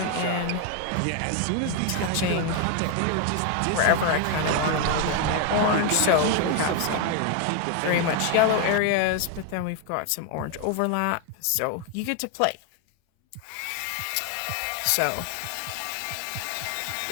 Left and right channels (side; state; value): both; different; correlation 0.01